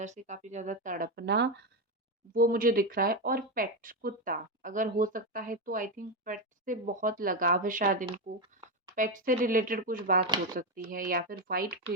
से काफ़ी ज़्यादा तड़पना, वो मुझे दिख रहा है। और पेट, कुत्ता, अगर हो सकता है तो आई थिंक पेट से बहुत लगाव है शायद इनको। पेट से रिलेटेड कुछ बात हो सकती है, या फिर व्हाइट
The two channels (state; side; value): normal; both; correlation 0.09